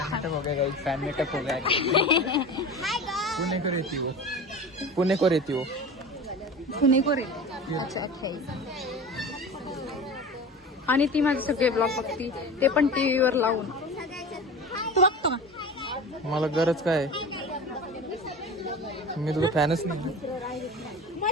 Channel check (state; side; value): normal; both; correlation 0.33